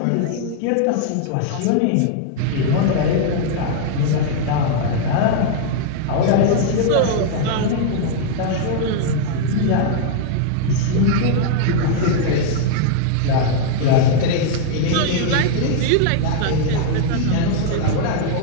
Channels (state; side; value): different; both; correlation -0.01